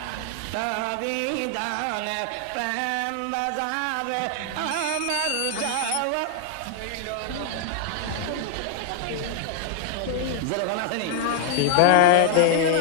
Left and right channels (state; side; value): different; both; correlation 0.00